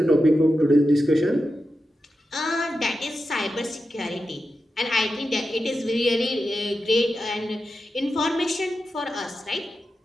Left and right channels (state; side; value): normal; both; correlation 0.90